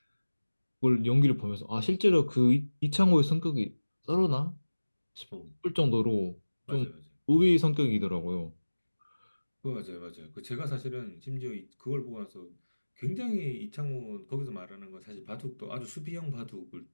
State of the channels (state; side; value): inverted; both; correlation -1.00